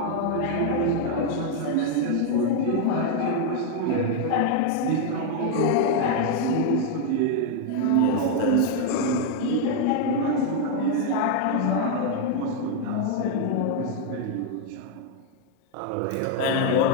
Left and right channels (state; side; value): different; both; correlation 0.00